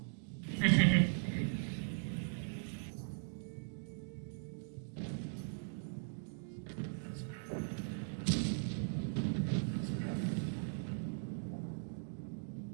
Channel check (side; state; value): left; silent; digital silence